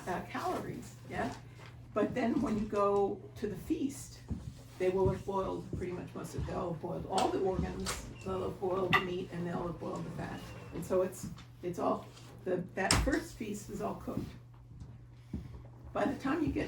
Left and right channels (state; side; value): identical; both; correlation 1.00